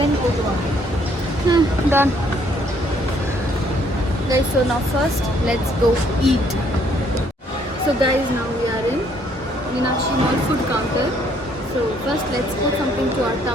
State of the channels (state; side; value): normal; both; correlation 0.66